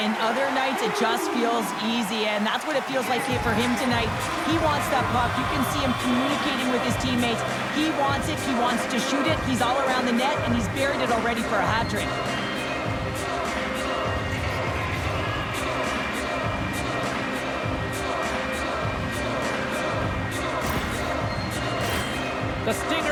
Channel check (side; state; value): both; identical; correlation 1.00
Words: and other nights it just feels easy, and that's what it feels like here for him tonight. He wants that puck. You can see him communicating with his teammates. He wants it. He wants to shoot it. He's all around the net, and he's buried it already for a hat trick. The